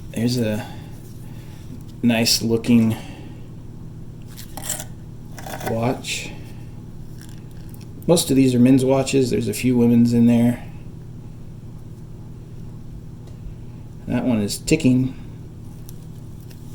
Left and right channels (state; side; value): identical; both; correlation 1.00